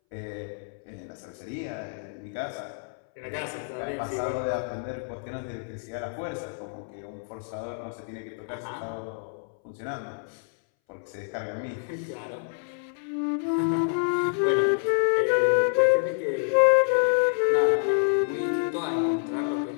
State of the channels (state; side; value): silent; right; 60 dB below the other